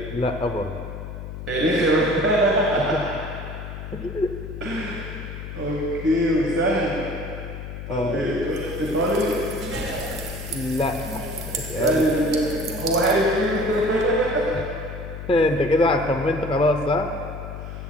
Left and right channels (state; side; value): noise; left; hum, 9 dB below the sound